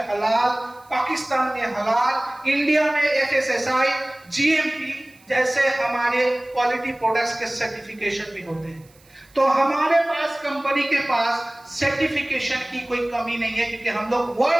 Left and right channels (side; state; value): right; noise; hiss, 29 dB below the sound